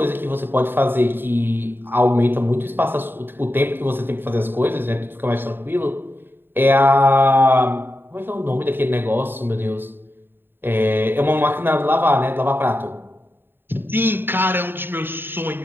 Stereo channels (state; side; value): late; left; 0.099 ms